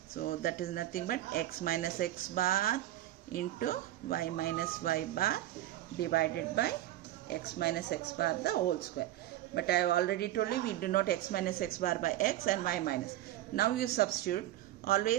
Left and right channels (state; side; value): quieter; left; 14.3 dB